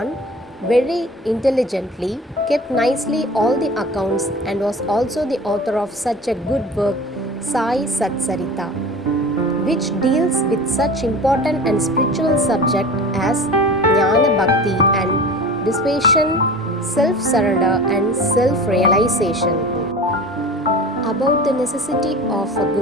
very intelligently, kept nicely all the accounts, and was also the author of such a good work, SAI SATCHARITA, which deals with such important and spiritual subject as Jnana Bhakti and dissipation, self-surrender and self-realization. About the necessity of a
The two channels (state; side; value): normal; both; correlation 0.37